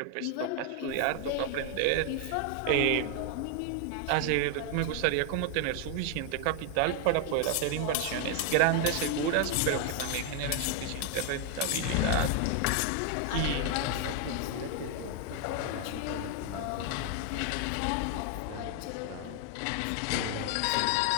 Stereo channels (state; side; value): different; both; correlation 0.00